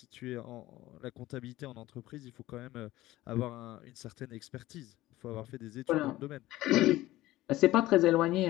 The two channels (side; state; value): right; quieter; 16.6 dB